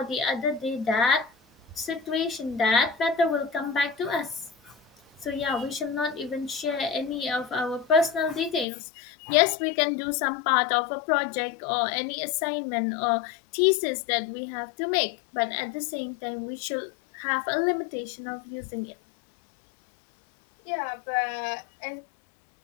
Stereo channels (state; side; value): drops out; right; at 8.7 s